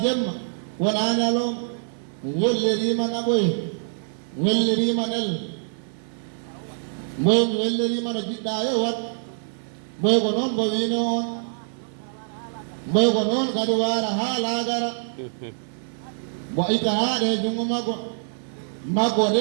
jemma wonaa ñalowma welliriima naɓoye welliriima nel mboy mi welliriima no jiɗɗa yo wat mboy ko noon mbo wiino on mboy ko noon kadi waara haa laagara mbo itta haaɗe e junngo makko de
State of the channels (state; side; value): silent; left; digital silence